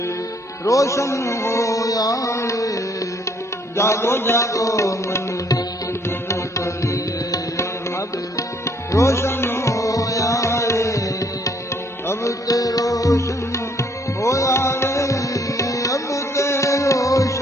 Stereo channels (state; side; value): normal; both; correlation 0.65